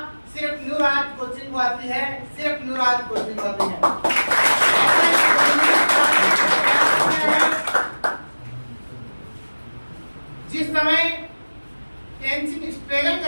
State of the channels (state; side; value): inverted; both; correlation -1.00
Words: सिर्फ न्यूराज कोचिंग को आती है, सिर्फ न्यूराज कोचिंग को आती है। जिस समय टेंशन स्ट्रगल